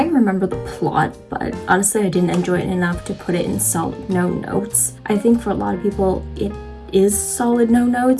remember the plot, but honestly I didn't enjoy it enough to put it in solid no notes. I think for a lot of people it is solid no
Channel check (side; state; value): both; identical; correlation 1.00